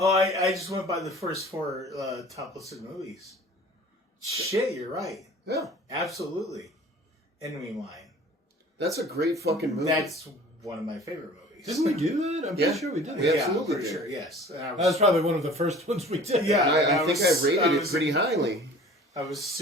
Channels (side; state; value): both; normal; correlation 0.46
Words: I just went by the first four top listed movies. Shit, you're right. Yeah, Absolutely. Enemy Mine. that's a great fucking movie. That's one of my favorite movies. Didn't we do that? I'm Yeah. pretty sure we did. Yeah. Yeah, absolutely I'm pretty did. sure, yes. And That was probably one of the first ones we did. Yeah. I think I rated it was- pretty highly. I was